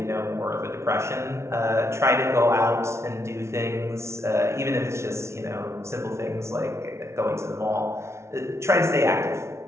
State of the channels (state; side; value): late; left; 0.13 ms